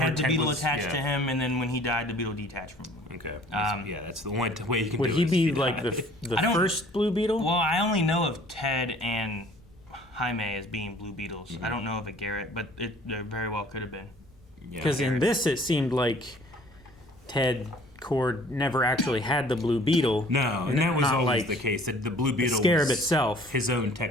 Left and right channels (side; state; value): both; normal; correlation 0.53